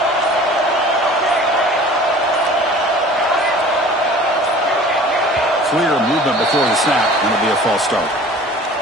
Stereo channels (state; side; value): normal; both; correlation 0.45